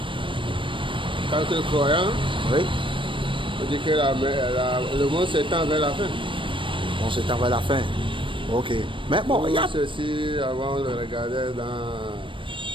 tant que croyant, Oui. on dit que le monde s'étend vers la fin. On s'étend vers la fin. Ok. Mais bon, il y a... Ceci, avant, on le regardait dans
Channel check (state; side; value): late; left; 0.25 ms